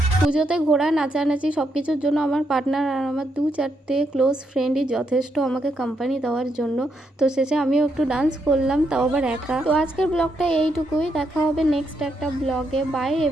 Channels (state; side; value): normal; both; correlation 0.79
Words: পুজোতে ঘোরা, নাচানাচি সব কিছুর জন্য আমার পার্টনার আর আমার 2-4টে ক্লোজ ফ্রেন্ডই যথেষ্ট আমাকে কোম্পানি দেওয়ার জন্য। তো শেষে আমিও একটু ডান্স করলাম, তাও আবার একা। তো আজকের ব্লগটা এইটুকুই, দেখা হবে নেক্সট একটা ব্লগে। By